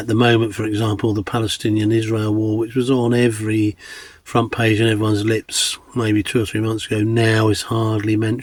the moment, for example, the Palestinian-Israel war, which was on every front page and everyone's lips maybe 2 or 3 months ago, now is hardly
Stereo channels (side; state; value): both; identical; correlation 1.00